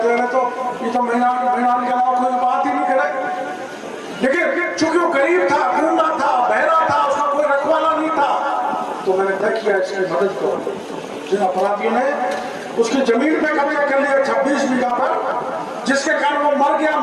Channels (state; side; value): identical; both; correlation 1.00